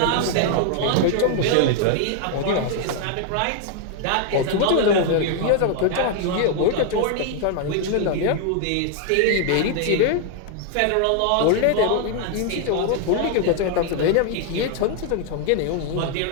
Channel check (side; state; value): both; different; correlation 0.00